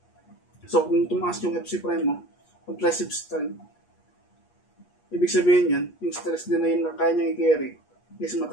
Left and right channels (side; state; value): right; late; 8.4 ms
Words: So, kung tumaas yung FC prime mo, compressive strength, ibig sabihin yan, yung stress din na yun na kaya niya i-carry is